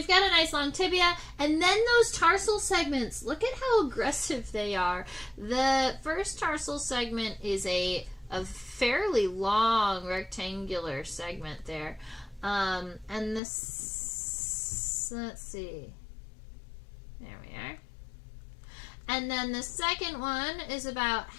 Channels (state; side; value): drops out; right; at 13.4 s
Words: got a nice long tibia, and then those tarsal segments. Look at how aggressive they are. The first tarsal segment is a fairly long rectangular segment there. And this, let's see. There we are. And then the second one is about